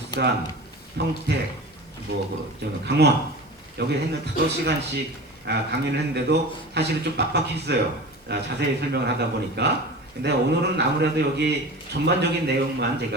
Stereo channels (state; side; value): normal; both; correlation 0.34